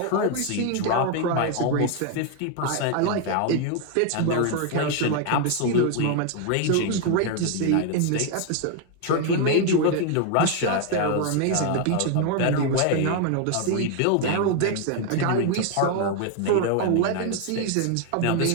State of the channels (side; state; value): both; different; correlation 0.01